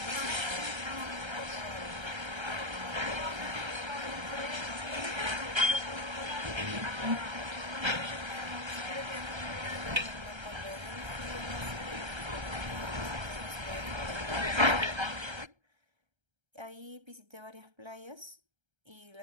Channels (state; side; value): late; left; 1.3 ms